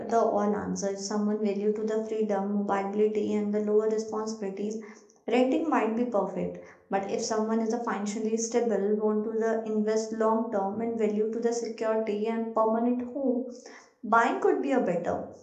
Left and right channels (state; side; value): identical; both; correlation 1.00